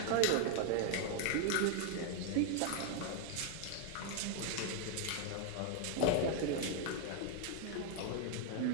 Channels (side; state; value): both; different; correlation 0.00